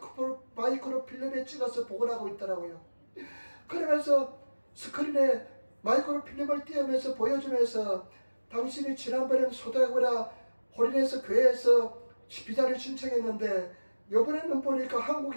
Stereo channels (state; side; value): inverted; both; correlation -1.00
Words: 마이크로 필름에 찍어서 복원하고 있더라고요. 그러면서 스크린에 마이크로 필름을 띄우면서 보여주면서 당신이 지난번에는 소다고라 홀인해서 교회에서 비자를 신청했는데 이번에는 보니까